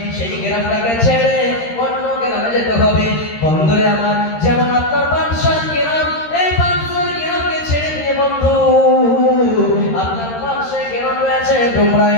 সেই গ্রামটাকে ছেড়ে অন্য গ্রামে যেতে হবে। বন্ধুরে আমার, যেমন আপনার 500 গ্রাম, এই 500 গ্রামকে ছেড়ে দিয়ে বন্ধু আপনার পাশে গ্রাম রয়েছে ডোমরা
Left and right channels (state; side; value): late; right; 13 ms